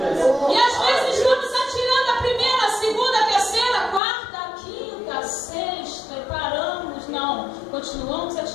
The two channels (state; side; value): drops out; right; at 4.0 s